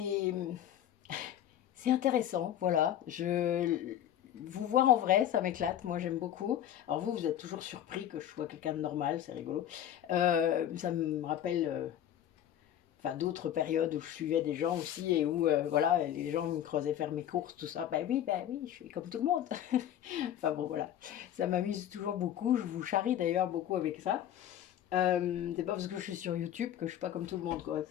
intéressant, voilà. Vous voir en vrai, ça m'éclate, moi j'aime beaucoup. Alors vous êtes toujours surpris que je sois quelqu'un de normal, c'est rigolo. Ça me rappelle enfin d'autres périodes où je suivais des gens aussi et où voilà, les gens me creusaient faire mes courses, tout ça. Ben oui, je suis comme tout le monde. Enfin bon, voilà, ça m'amuse toujours beaucoup. Je vous charrie d'ailleurs beaucoup avec ça. C'est pas parce que je suis sur YouTube que je suis pas comme tout le monde, quoi.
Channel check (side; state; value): right; quieter; 10.9 dB